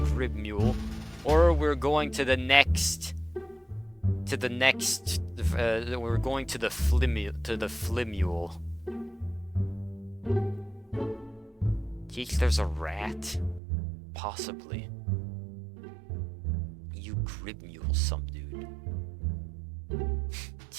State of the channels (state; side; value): drops out; left; at 13.6 s